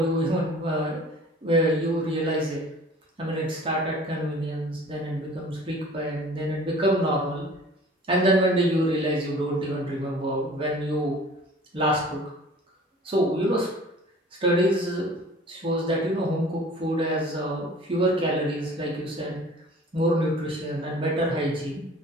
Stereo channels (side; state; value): both; normal; correlation 0.47